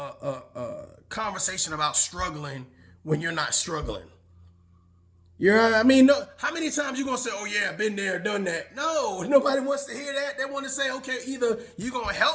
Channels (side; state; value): both; identical; correlation 1.00